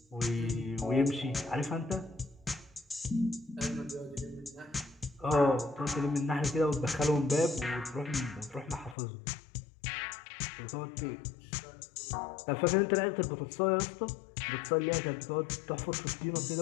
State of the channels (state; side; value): drops out; right; at 9.0 s